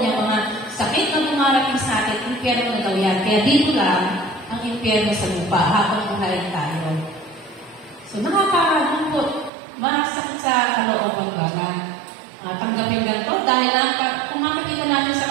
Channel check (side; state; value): left; drops out; at 9.5 s